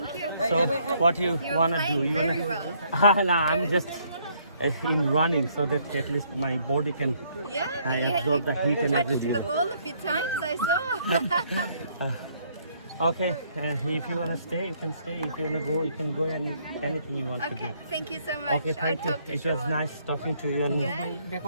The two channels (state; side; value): inverted; both; correlation -0.67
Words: you. So what you wanna playing do? You very wanna? well. No, I'm just in running so that at least my body can Yeah, I absorb the heat and touched everything. the ball a few times, I saw. Okay, if you wanna stay, you can stay. If you wanna go, you can go. Anything you want to do. Okay, thank you so much. Okay, thank I'll you. talk to It you was nice talking to you. And